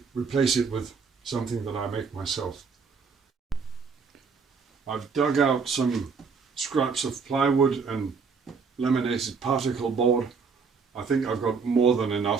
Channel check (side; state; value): left; quieter; 5.3 dB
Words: replace it with something that I make myself. I've dug out some scraps of plywood and laminated particle board. I think I've got more than